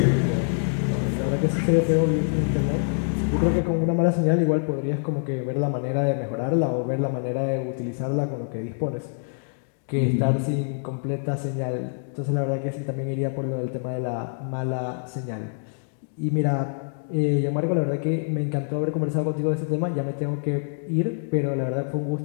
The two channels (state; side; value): silent; right; digital silence